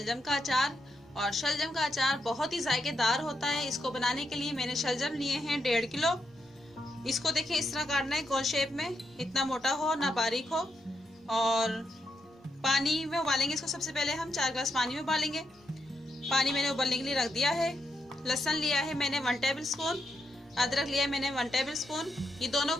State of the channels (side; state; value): both; normal; correlation 0.82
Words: का अचार। और शलजम का अचार बहुत ही जायकेदार होता है। इसको बनाने के लिए मैंने शलजम लिए हैं 1.5 किलो। इसको देखें, इस तरह काटना है गोल शेप में, इतना मोटा हो ना बारीक हो। और पानी में उबालेंगे इसको। सबसे पहले हम 4 गिलास पानी में उबालेंगे। पानी मैंने उबलने के लिए रख दिया है। लहसुन लिया है मैंने 1 टेबल स्पून, अदरक लिया है मैंने 1 टेबल स्पून। ये दोनों